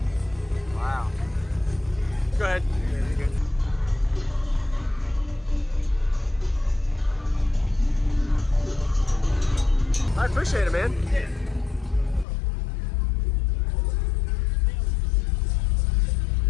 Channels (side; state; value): right; drops out; at 12.2 s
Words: Wow. Go ahead. Yeah, you're good. I appreciate it, man. Yeah.